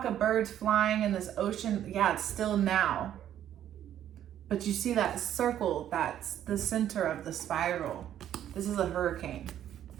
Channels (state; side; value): quieter; left; 10.9 dB